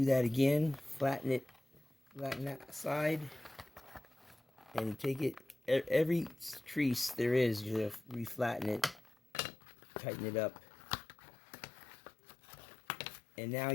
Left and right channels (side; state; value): right; drops out; at 9.2 s